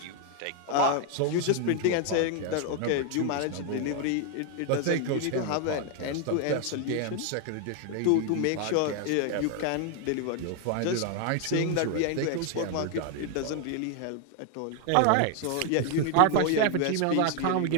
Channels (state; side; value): different; both; correlation 0.00